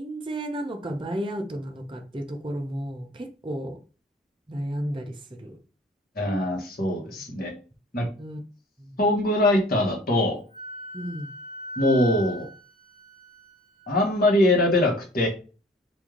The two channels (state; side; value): normal; both; correlation 0.50